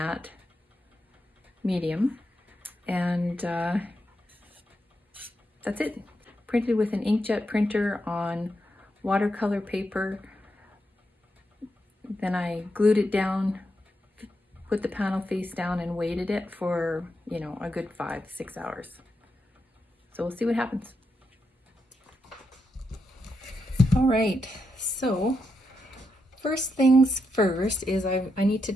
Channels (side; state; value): both; normal; correlation 0.84